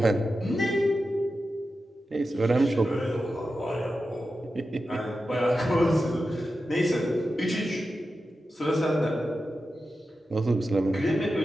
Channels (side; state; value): both; normal; correlation 0.91